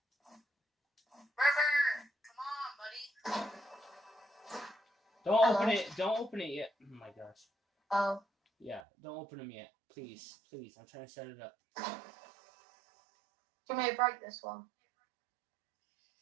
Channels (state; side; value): drops out; left; at 8.8 s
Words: River, come on, buddy. Don't Hello? open it. Don't open it yet. Oh my gosh. Oh. Yeah, don't open them yet. Please. Please. I'm trying to set it up. You may break this one.